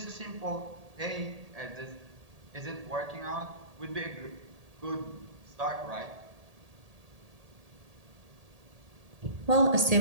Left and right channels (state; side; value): late; left; 1.8 ms